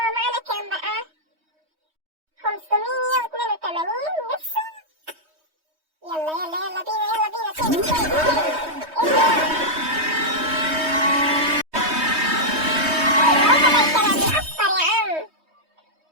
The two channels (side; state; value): left; late; 3.2 ms